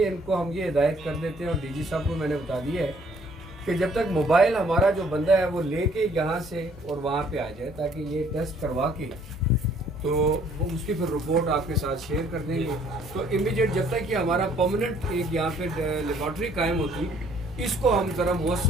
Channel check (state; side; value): normal; both; correlation 0.61